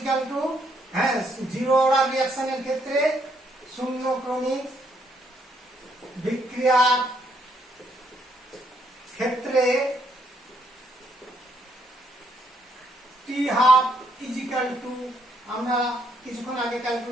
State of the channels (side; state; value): both; normal; correlation 0.72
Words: টু, হ্যাঁ জিরো অর্ডার রিঅ্যাকশনের ক্ষেত্রে শূন্যক্রমিক বিক্রিয়ার ক্ষেত্রে টি হাফ ইজিক্যাল টু, আমরা কিছুক্ষণ আগে